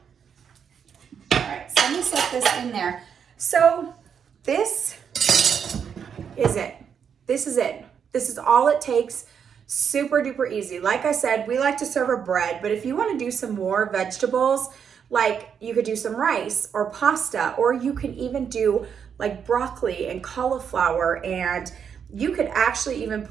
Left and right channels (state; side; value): quieter; left; 7.4 dB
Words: All right, so let me set this in there. So this is it. This is it. This is all it takes. Super duper easy. Like I said, we like to serve a bread, but if you want to do some more vegetables, like you could do some rice or pasta, or you can even do like broccoli and cauliflower, and you could actually even